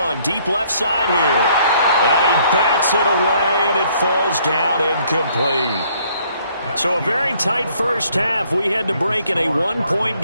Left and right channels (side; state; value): both; inverted; correlation -0.64